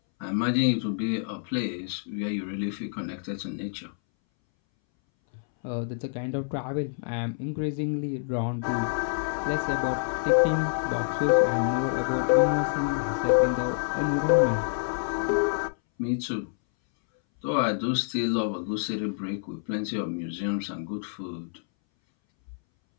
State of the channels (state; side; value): silent; right; 60 dB below the other